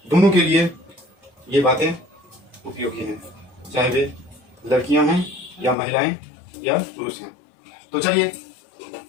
दोनों के लिए ये बातें उपयोगी हैं, चाहे वे लड़कियां हैं या महिलाएं या पुरुष हैं। तो चलिए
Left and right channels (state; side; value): drops out; right; at 5.8 s